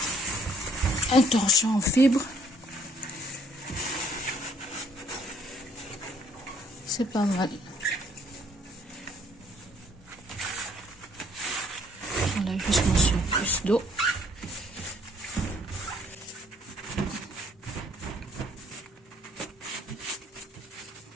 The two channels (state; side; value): normal; both; correlation 0.63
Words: un torchon en fibre, c'est pas mal. J'enlève juste mon surplus d'eau.